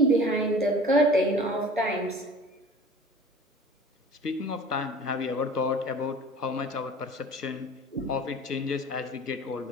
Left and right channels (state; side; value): normal; both; correlation 0.44